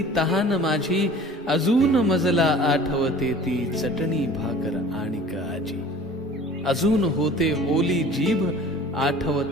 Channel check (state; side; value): normal; both; correlation 0.46